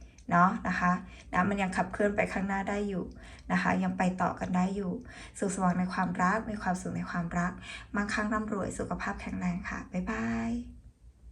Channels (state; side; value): identical; both; correlation 1.00